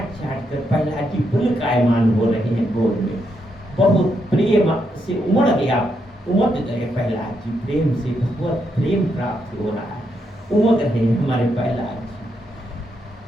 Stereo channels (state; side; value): normal; both; correlation 0.80